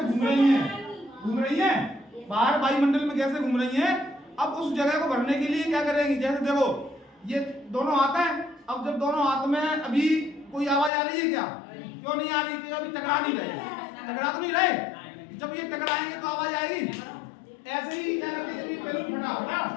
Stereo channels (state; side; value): drops out; right; at 10.9 s